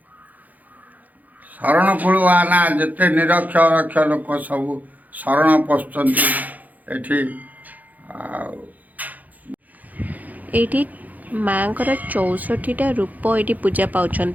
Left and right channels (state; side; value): late; left; 0.080 ms